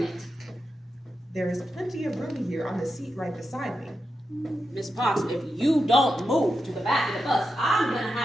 it. There is plenty of room here on the seat right beside me. Miss Parks, if you don't move to the back of the bus, I'm gonna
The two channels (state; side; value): normal; both; correlation 0.88